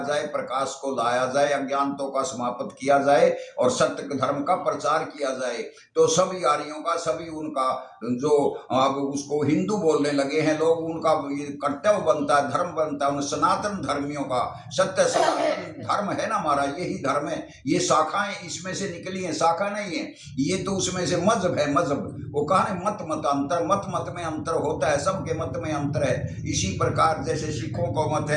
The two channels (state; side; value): identical; both; correlation 1.00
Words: जाए, प्रकाश को लाया जाए, अज्ञानों का समाप्त किया जाए और सत्य धर्म का प्रचार किया जाए। तो सभी आर्यों का, सभी उनका जो अब उसको हिंदू बोलने लगे हैं लोग, उनका ये कर्तव्य बनता है, धर्म बनता है, उन सनातन धर्मियों का। सत्य सनातन धर्म है ना हमारा, यही धर्म है। ये शाखाएं इसमें से निकली हैं, शाखा नहीं है ये, तो उसमें से मजहब है। मजहब वो कहा है मत अंतर, मत में अंतर होता है, सबके मत में अंतर है। इसी प्रकार जैसे सिखों को मत